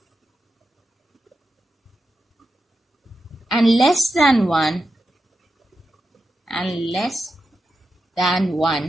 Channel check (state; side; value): normal; both; correlation 0.89